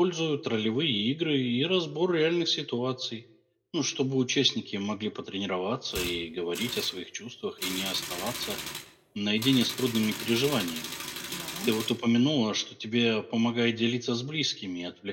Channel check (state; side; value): identical; both; correlation 1.00